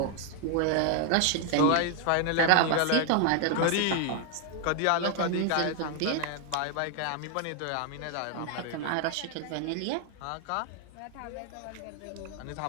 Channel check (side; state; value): both; different; correlation 0.00